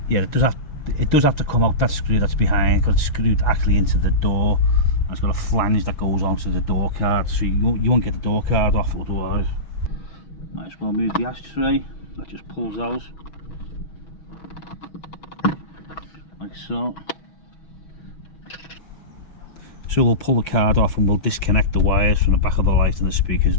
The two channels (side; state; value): right; late; 6.2 ms